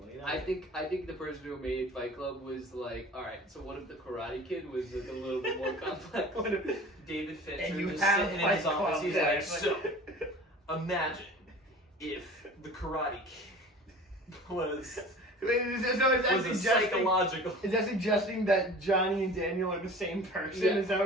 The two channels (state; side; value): normal; both; correlation 0.41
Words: You know? I think the person who made Fight Club was like, all right. So what if the Karate Kid was like a little bit more complex? What if David Fincher and you just have sitting in his Fight office, Club, he's yeah, like, it's so imagine if the Karate Kid was is that a psychological. Is that suggesting that Johnny and Daniel are the same person? Yeah. Is that